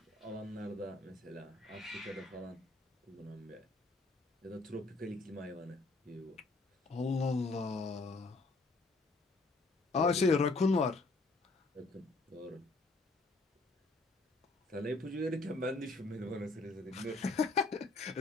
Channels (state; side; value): quieter; right; 3.2 dB